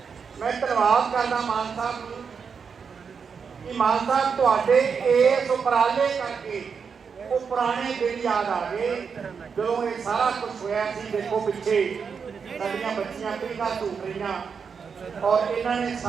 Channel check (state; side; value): quieter; left; 6.1 dB